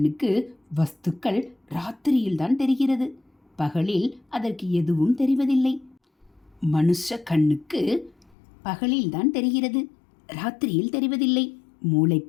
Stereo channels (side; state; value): right; drops out; at 8.3 s